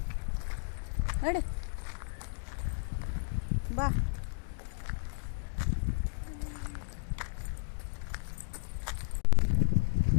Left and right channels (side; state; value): right; silent; digital silence